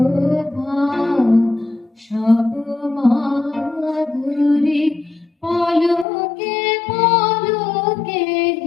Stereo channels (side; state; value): right; drops out; at 6.1 s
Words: সব মাধুরী পলকে পলকে